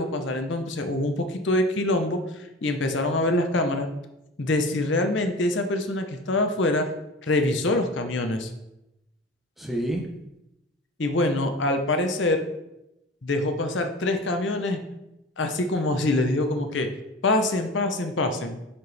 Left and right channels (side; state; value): both; normal; correlation 0.35